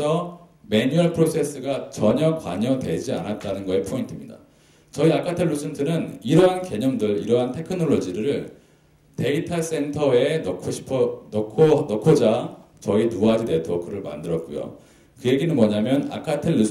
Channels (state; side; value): identical; both; correlation 1.00